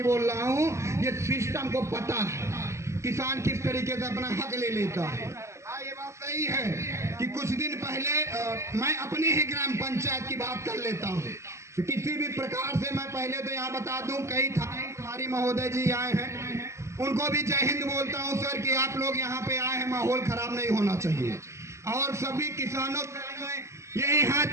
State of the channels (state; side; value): late; left; 0.14 ms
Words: बोल रहा हूँ, ये सिस्टम को पता है किसान किस तरीके से अपना हक ले लेता है। ये बात सही है कि कुछ दिन पहले मैं अपनी ही ग्राम पंचायत की बात कर लेता हूँ। किसी भी प्रकार से मैं पहले तो यहाँ बता दूं, कई थारी महोदय जी आए हैं, उनको भी जय हिंद बोलता हूँ सर कि आप लोग यहाँ पे आए हैं, माहौल खराब नहीं होना चाहिए। और सभी किसानों को यही हाथ